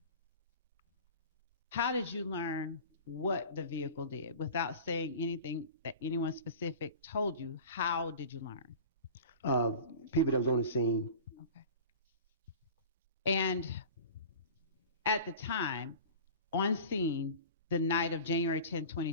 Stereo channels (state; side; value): inverted; both; correlation -0.37